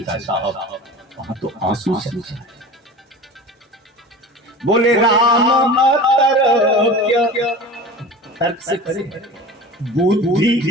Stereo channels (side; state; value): both; normal; correlation 0.36